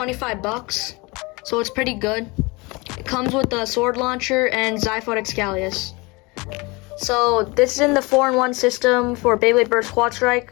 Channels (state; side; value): quieter; right; 25.7 dB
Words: bucks, so it's pretty good. It comes with the sword launcher and Xiphoid Xcalius. So this is in the 4-in-1 system for beybladeburst